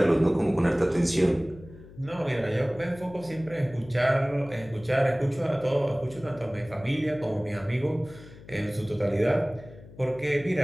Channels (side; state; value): left; noise; hum, 19 dB below the sound